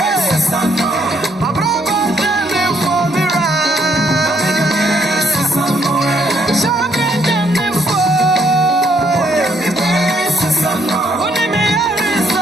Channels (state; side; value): normal; both; correlation 0.70